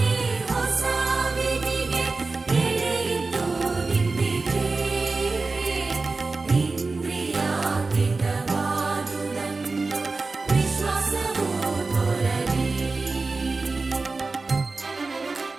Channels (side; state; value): left; quieter; 3.8 dB